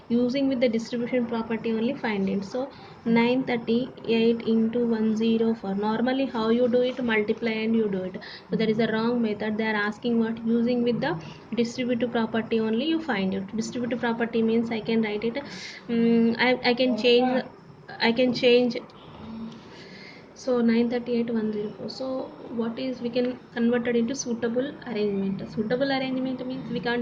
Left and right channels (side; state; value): both; identical; correlation 1.00